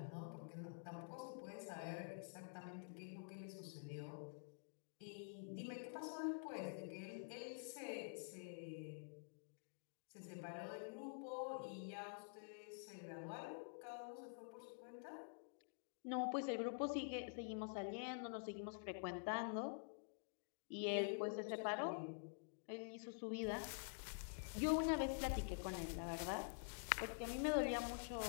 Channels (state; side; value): silent; right; digital silence